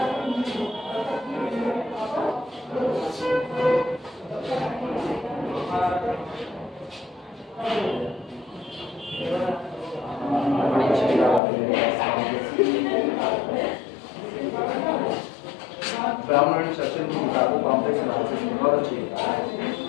ब्राउन एंड सर्किल की किताबों कॉम्प्लेक्स एनालिसिस बहुत अच्छी है,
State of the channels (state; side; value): drops out; right; at 11.4 s